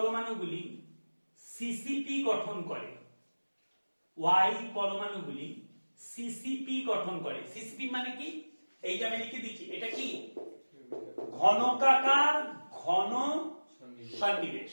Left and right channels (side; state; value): both; inverted; correlation -1.00